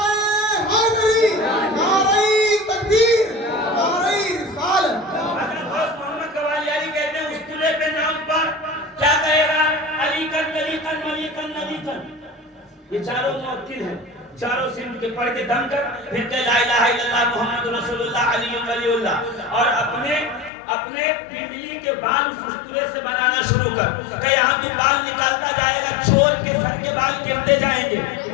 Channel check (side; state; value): right; drops out; at 20.5 s